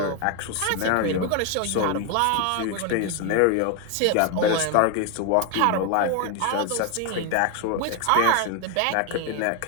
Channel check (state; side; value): different; both; correlation 0.01